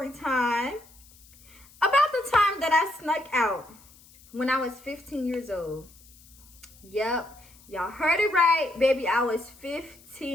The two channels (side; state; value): left; noise; hiss, 25 dB below the sound